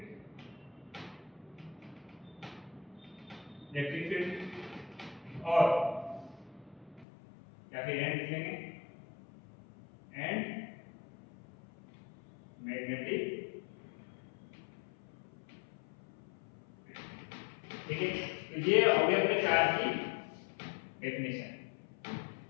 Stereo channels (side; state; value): right; drops out; at 7.1 s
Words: और या फिर and लिख लेंगे, एंड मैग्नेटिक, ठीक है। तो ये हो गया अपने चार्ज की डेफिनेशन।